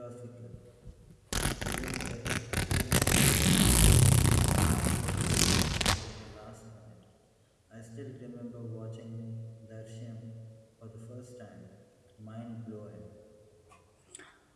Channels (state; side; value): identical; both; correlation 1.00